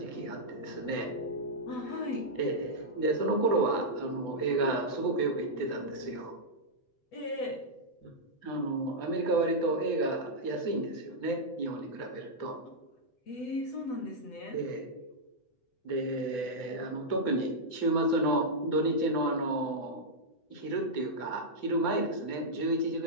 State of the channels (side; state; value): right; late; 8.0 ms